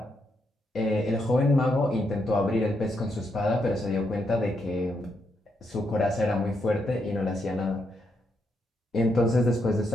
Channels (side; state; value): both; normal; correlation 0.79